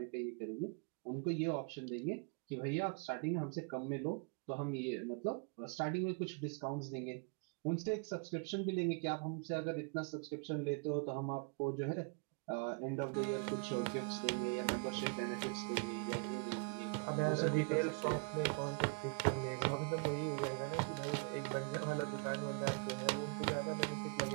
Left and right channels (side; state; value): left; quieter; 36.7 dB